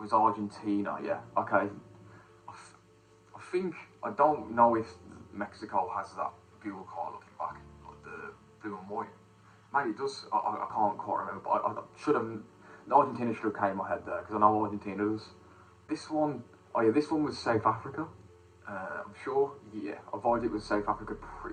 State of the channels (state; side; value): identical; both; correlation 1.00